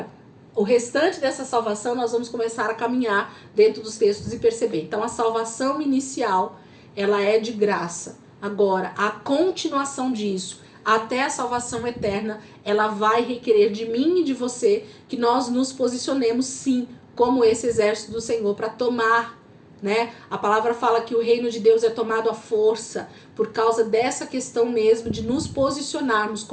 o restante dessa salvação nós vamos começar a caminhar dentro dos textos e perceber. Então a salvação inicial, ela é de graça. Agora, a continuação disso, até a salvação eterna, ela vai requerer de mim e de você que nós nos posicionemos sim, como esse exército do Senhor, para tomar, né? A palavra fala que o reino de Deus é tomado à força, por causa dessa questão mesmo de nos posicionarmos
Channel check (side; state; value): both; identical; correlation 1.00